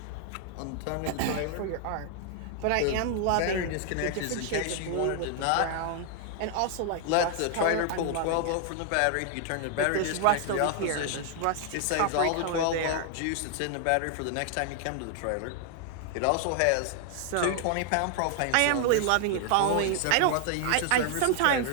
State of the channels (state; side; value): different; both; correlation 0.00